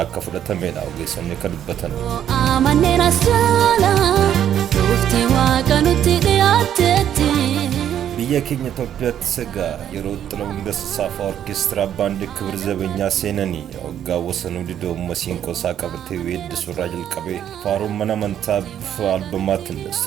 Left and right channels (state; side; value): quieter; left; 10.1 dB